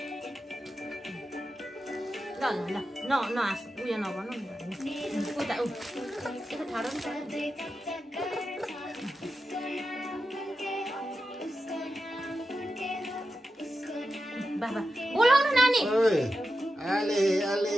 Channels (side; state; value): both; normal; correlation 0.90